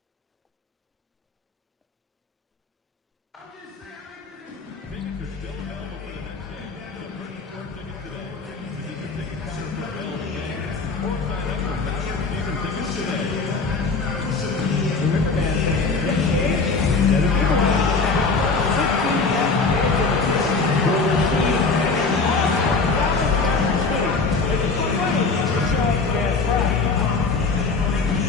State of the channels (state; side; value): quieter; right; 4.2 dB